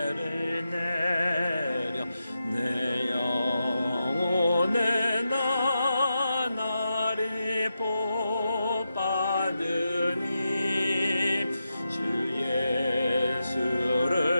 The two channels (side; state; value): both; inverted; correlation -0.88